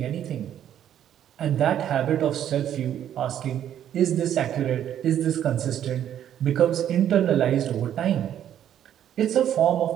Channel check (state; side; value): quieter; left; 10.4 dB